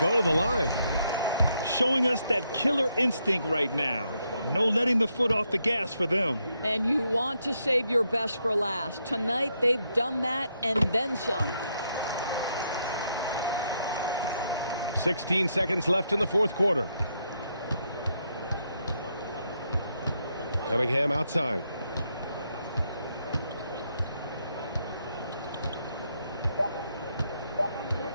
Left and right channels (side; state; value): both; inverted; correlation -0.78